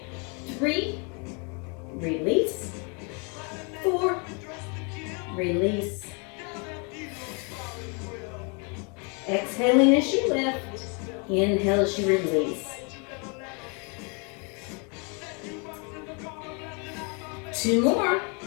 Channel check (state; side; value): quieter; right; 34.5 dB